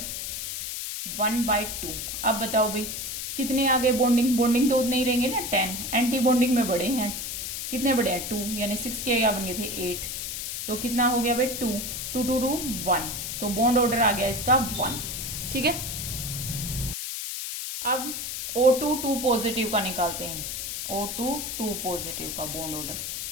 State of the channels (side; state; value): left; noise; hiss, 5 dB below the sound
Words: 1/2। अब बताओ भाई कितने आ गए बॉन्डिंग, बॉन्डिंग तो उतने ही रहेंगे ना, 10। एंटी बॉन्डिंग में बड़े हैं, कितने बड़े हैं, 2, यानी 6 के क्या बन गए थे, 8। तो कितना हो गया भाई, 2, 2, 2, 2, 1। तो बॉन्ड ऑर्डर आ गया इसका 1। ठीक है, अब O2, 2 पॉजिटिव का निकालते हैं। O2, 2 पॉजिटिव का बॉन्ड ऑर्डर